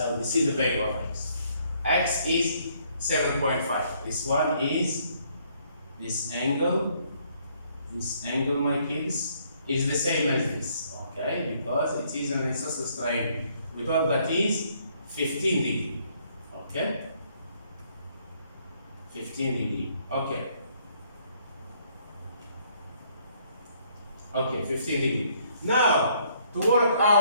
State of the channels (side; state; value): both; inverted; correlation -0.67